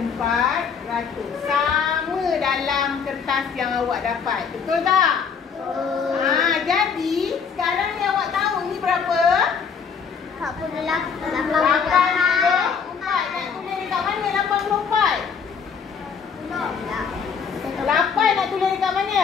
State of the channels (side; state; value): right; quieter; 6.3 dB